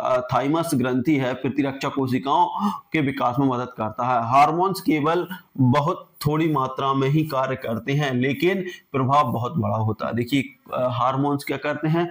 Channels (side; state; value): both; identical; correlation 1.00